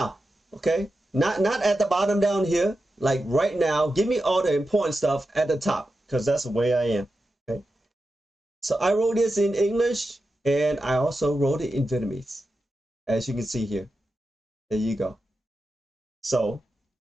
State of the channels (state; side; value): normal; both; correlation 0.90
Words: Okay, not at the bottom down here, like right now. Give me all the important stuff at the top, because that's the way I am. Okay, so I wrote this in English and I also wrote it in Vietnamese, as you can see here. There you go. So